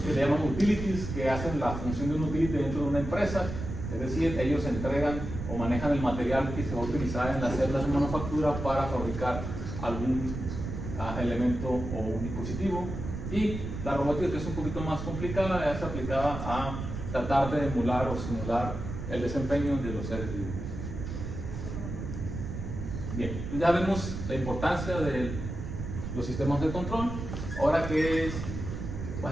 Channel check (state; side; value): noise; right; rumble, 6 dB below the sound